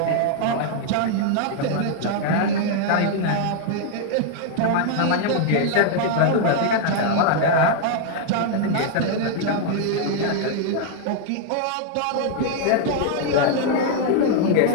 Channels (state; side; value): different; both; correlation 0.00